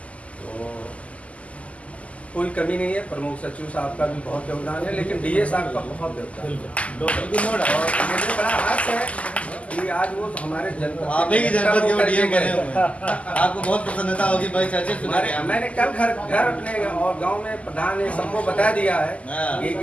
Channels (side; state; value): right; late; 0.066 ms